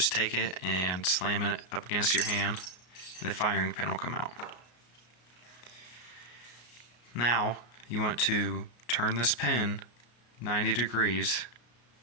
take it and slam it up against your hand, and the firing pin will come out. Now, you want to turn this pin 90 degrees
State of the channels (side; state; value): right; late; 33 ms